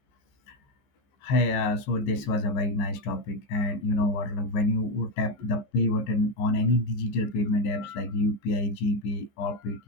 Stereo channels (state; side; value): late; right; 15 ms